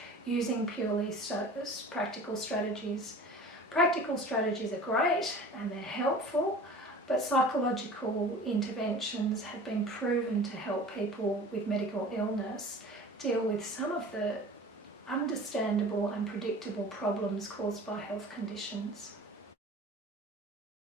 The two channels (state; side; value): normal; both; correlation 0.41